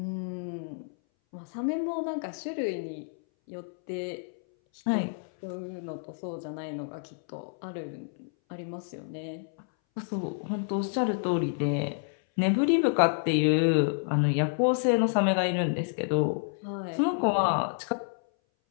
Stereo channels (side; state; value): right; silent; 58 dB below the other